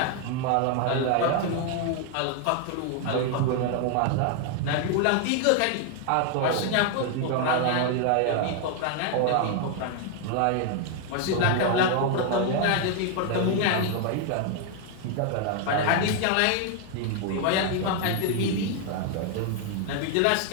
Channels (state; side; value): different; both; correlation 0.00